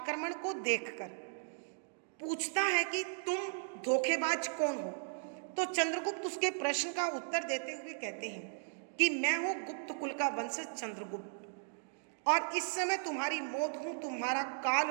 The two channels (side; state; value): left; silent; digital silence